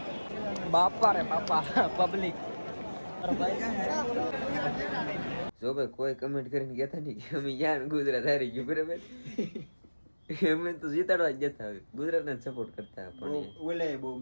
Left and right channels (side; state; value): both; inverted; correlation -1.00